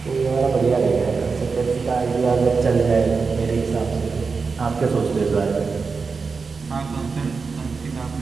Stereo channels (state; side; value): quieter; left; 4.8 dB